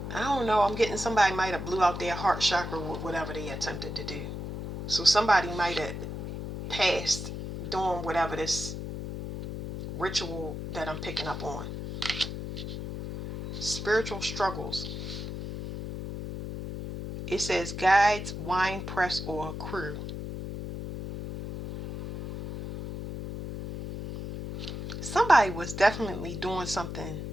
I don't know. I'm getting somebody might have blew out their heart chakra with whatever they attempted to do. So somebody might have passed doing whatever this ritual that I'm picking up on. Spiritual struggles. It says guides, wine press, or crew. Somebody was definitely doing something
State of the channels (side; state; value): left; noise; hum, 7 dB below the sound